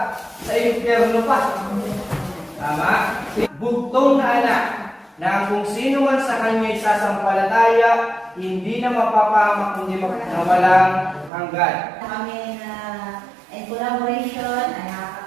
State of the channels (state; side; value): drops out; left; at 11.3 s